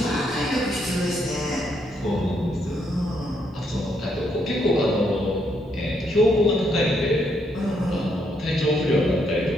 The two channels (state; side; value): normal; both; correlation 0.75